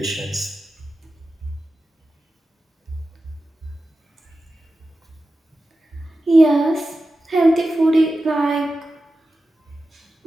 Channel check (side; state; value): both; normal; correlation 0.93